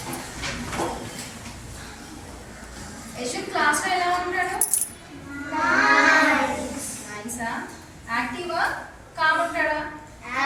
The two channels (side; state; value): both; identical; correlation 1.00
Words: యశ్విక్ క్లాస్లో ఎలా ఉంటాడు? నైసా? యాక్టివా కామ్ ఉంటాడా?